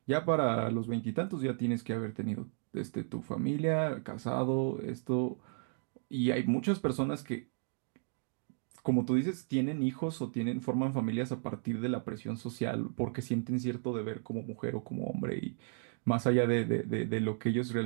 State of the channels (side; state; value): left; silent; 55 dB below the other